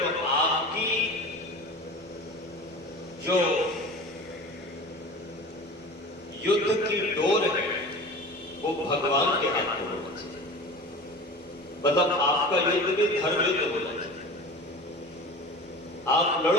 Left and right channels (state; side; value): normal; both; correlation 0.35